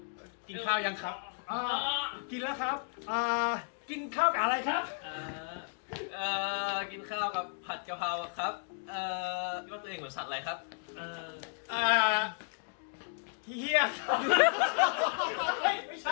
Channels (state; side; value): silent; right; 55 dB below the other